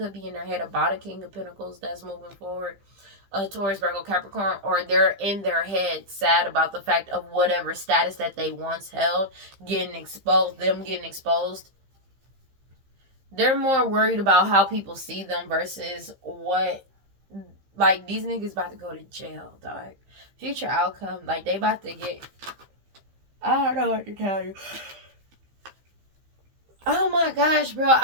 be in their head about a King of Pentacles that's moving forward, a Taurus, Virgo, Capricorn, or they're in their head sad about the fact of whatever status that they once held getting exposed, them getting exposed. They're more worried about how people see them versus what, like, these niggas about to go to jail, dog. Future outcome, like, they about to get, I don't know what to tell you. Oh my gosh, bro,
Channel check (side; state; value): left; late; 15 ms